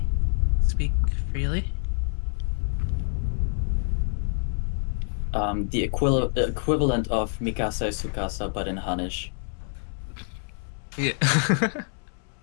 speak freely. The equivalent of Mikasa Sukasa, but in Hanish. Yeah.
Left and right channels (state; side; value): silent; right; 57 dB below the other